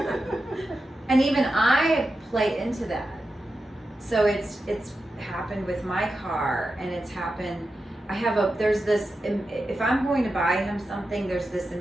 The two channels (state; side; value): normal; both; correlation 0.90